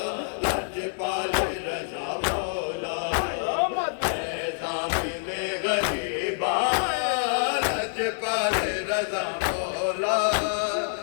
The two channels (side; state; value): right; silent; 60 dB below the other